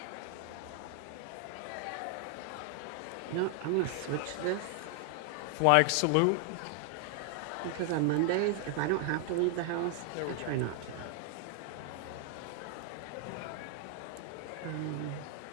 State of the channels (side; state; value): both; different; correlation 0.00